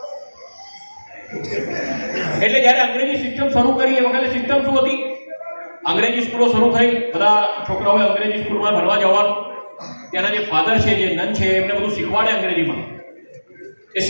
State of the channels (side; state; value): both; inverted; correlation -1.00